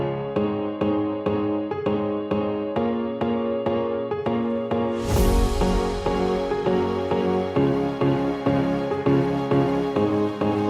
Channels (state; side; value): identical; both; correlation 1.00